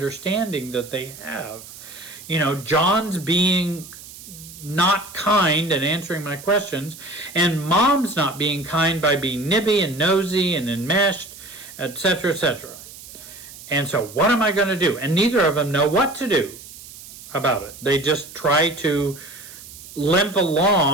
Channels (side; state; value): right; noise; hiss, 16 dB below the sound